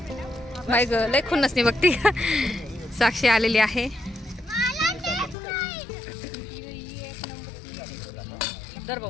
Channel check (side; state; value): right; drops out; at 5.4 s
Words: बाई ग लय खुन्नस नाही बघती. साक्षी आलेली आहे. दर